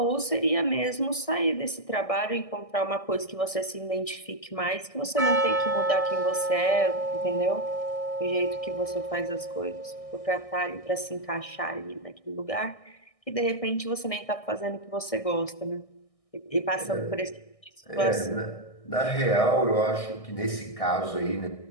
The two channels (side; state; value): right; late; 1.6 ms